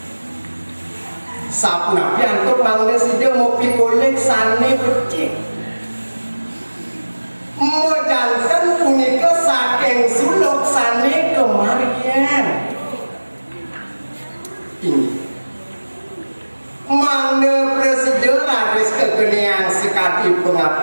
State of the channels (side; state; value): both; inverted; correlation -1.00